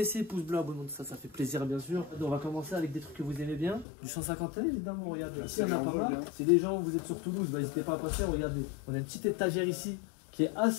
pouce bleu, abonnement, ça fait plaisir bien sûr. On va commencer avec des trucs que vous aimez bien. Du 151 évidemment, regardez. Ici, il y en a pas mal. Si les gens, vous êtes sur Toulouse, bah, n'hésitez pas à passer. Regardez, on a une petite étagère ici qui est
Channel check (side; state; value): right; drops out; at 3.9 s